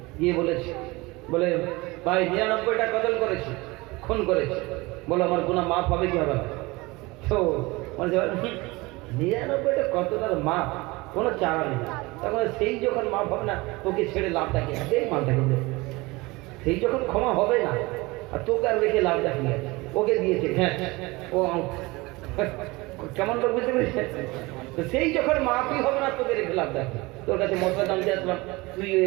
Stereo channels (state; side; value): quieter; left; 22.8 dB